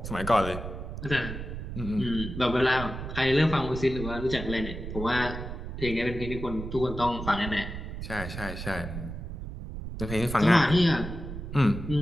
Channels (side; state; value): right; noise; rumble, 8 dB below the sound